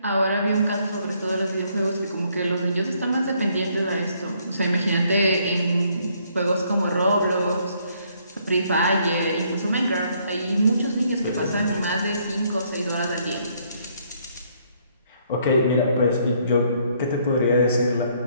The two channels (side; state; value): both; inverted; correlation -0.68